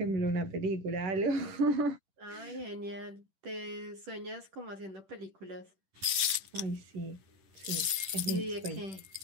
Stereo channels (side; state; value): left; late; 10 ms